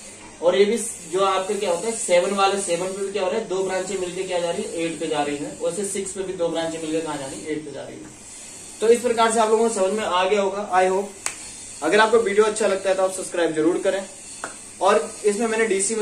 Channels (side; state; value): both; identical; correlation 1.00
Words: और ये भी जो आपके क्या होता है 7 वाले 7 पे भी क्या हो रहा है, 2 ब्रांचें मिलकर क्या जा रही है, 8 पे जा रही है, वैसे 6 पे भी 2 ब्रांचें मिलकर कहाँ जा रही है, 8 पे जा रही है। तो इस प्रकार से आप लोगों को समझ में आ गया होगा, आई होप। अगर आपको वीडियो अच्छा लगता है तो आप सब्सक्राइब जरूर करें, और इसमें मैंने डीसी